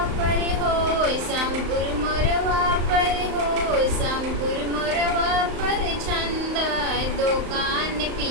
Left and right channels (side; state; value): left; late; 35 ms